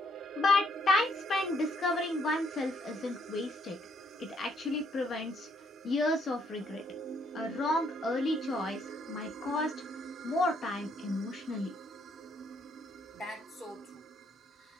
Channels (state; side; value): normal; both; correlation 0.71